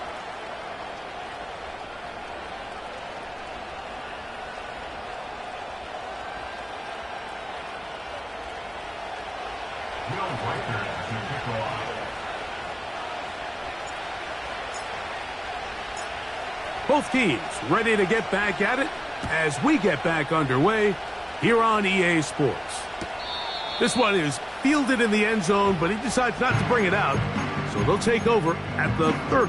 Both teams ready to get back at it as we get back underway here on EA Sports. This one is fielded in the end zone, but he decides not to bring it out, so they'll take over at the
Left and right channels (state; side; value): identical; both; correlation 1.00